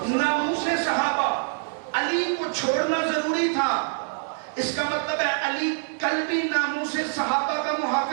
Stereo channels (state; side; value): silent; left; 61 dB below the other